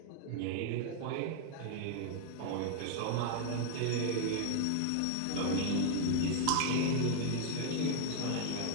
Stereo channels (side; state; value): both; different; correlation 0.00